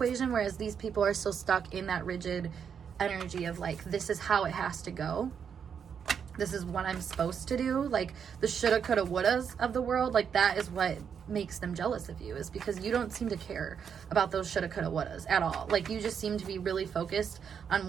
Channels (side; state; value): left; quieter; 7.3 dB